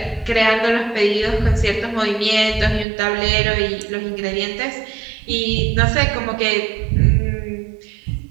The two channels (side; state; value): left; drops out; at 2.9 s